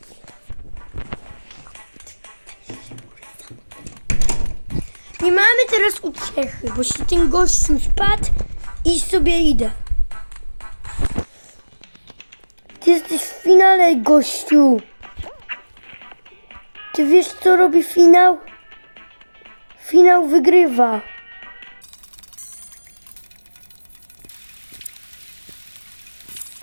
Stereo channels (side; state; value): both; inverted; correlation -1.00